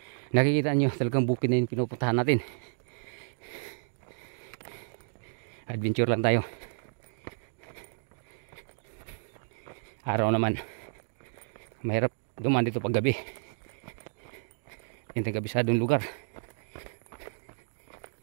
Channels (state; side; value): silent; left; digital silence